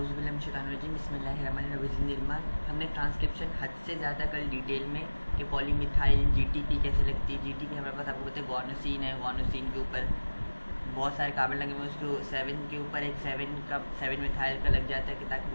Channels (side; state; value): both; inverted; correlation -1.00